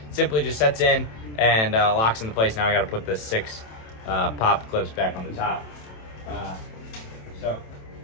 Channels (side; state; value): right; late; 27 ms